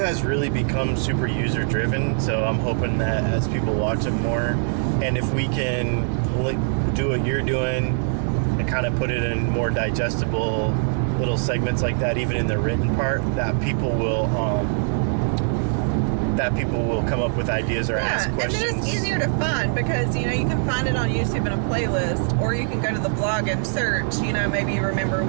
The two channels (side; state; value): left; silent; digital silence